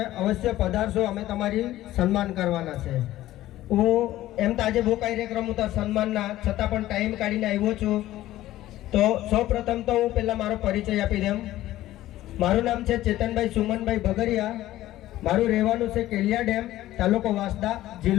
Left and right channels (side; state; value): right; quieter; 14.9 dB